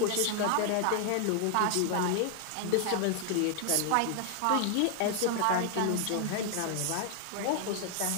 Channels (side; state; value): both; different; correlation 0.00